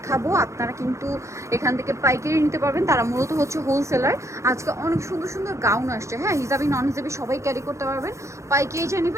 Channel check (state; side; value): late; left; 0.14 ms